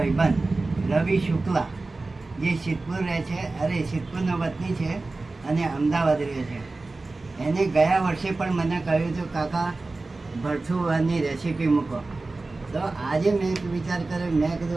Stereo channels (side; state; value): left; quieter; 3.4 dB